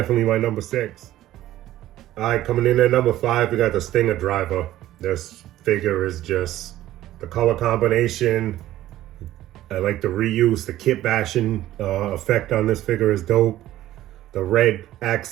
my number 6. All right, coming in at number 5, we got the Stinger Driver. This figure is just the color combination. I like the reuse, the kit bashing effect on this figure is dope. The red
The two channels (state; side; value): quieter; left; 14.2 dB